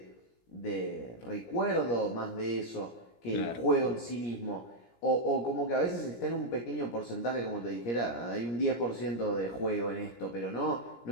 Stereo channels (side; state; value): right; late; 17 ms